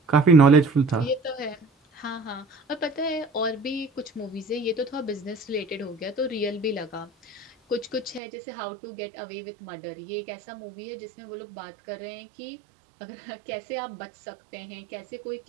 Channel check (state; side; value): drops out; left; at 8.2 s